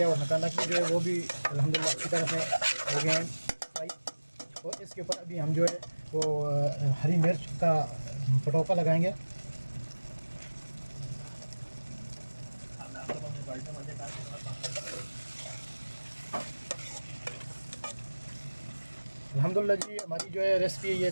और नकानक भी जो है वो भी अल्हम्दुलिल्लाह अच्छी तरह से हो गए हैं भाई। और इसके ऊपर अभी हम जो है वो हरी मिर्च का पटौका लगाएंगे। अल्हम्दुलिल्लाह जी हमारी जो है रेसिपी ये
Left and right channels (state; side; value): inverted; both; correlation -1.00